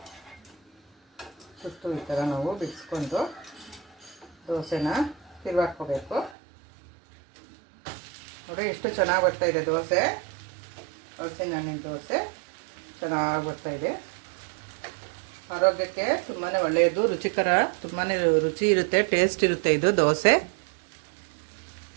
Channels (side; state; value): left; drops out; at 6.4 s